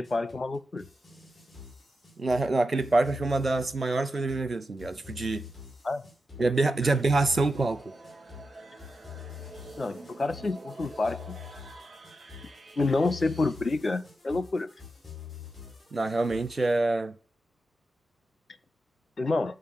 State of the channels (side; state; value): both; normal; correlation 0.89